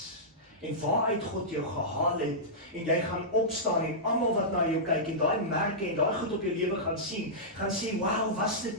en waaruit God jou gehaal het, en jy gaan opstaan en almal wat na jou kyk en daai merke en daai goed op jou lewe gaan sien, gaan sê, wow, was dit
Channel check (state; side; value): normal; both; correlation -0.14